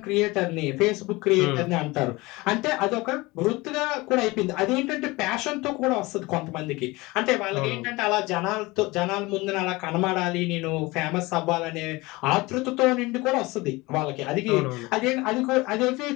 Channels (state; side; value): quieter; right; 22.3 dB